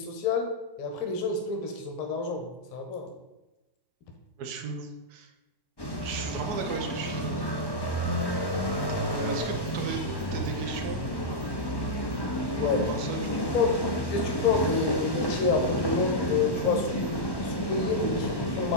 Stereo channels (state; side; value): late; right; 1.1 ms